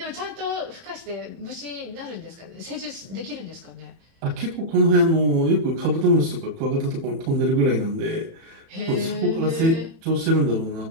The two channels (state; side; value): late; left; 31 ms